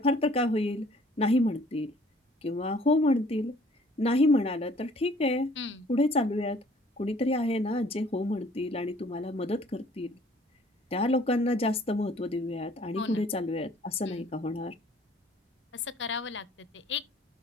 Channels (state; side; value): normal; both; correlation 0.57